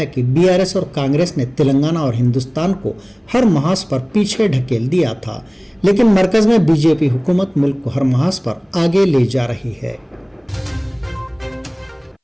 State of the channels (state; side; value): identical; both; correlation 1.00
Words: कि बीआरएस और कांग्रेस ने तेलंगाना और हिंदुस्तान को हर महाज पर पीछे ढकेल दिया था, लेकिन मरकज में बीजेपी हुकूमत मुल्क को हर महाज पर आगे ले जा रही है।